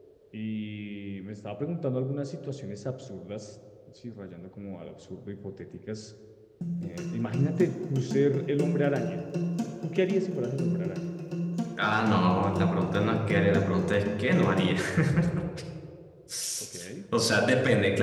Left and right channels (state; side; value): identical; both; correlation 1.00